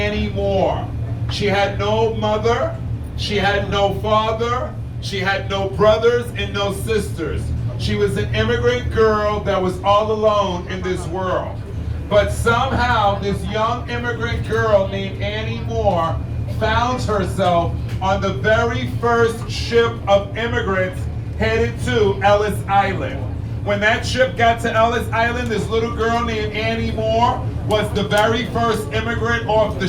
Moore. She had no mother, she had no father, she had no brothers and no sisters. She was an immigrant girl that was all alone in this world. But somehow this young immigrant girl named Annie Moore found herself on the very first ship of immigrants headed to Ellis Island. When that ship got to Ellis Island, this little girl named Annie Moore was the very first immigrant off the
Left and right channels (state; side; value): identical; both; correlation 1.00